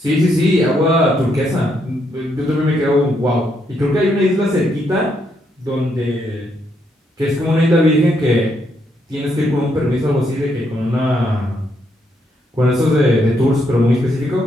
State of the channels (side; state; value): both; normal; correlation 0.76